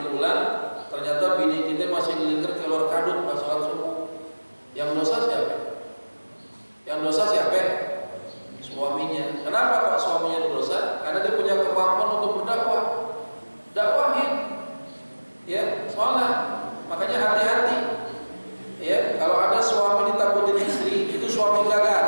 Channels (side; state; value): both; inverted; correlation -1.00